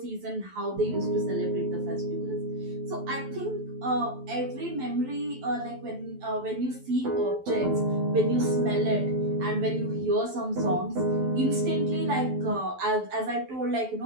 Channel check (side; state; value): left; late; 12 ms